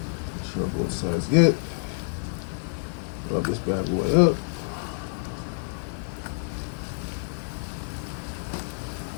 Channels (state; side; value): silent; right; digital silence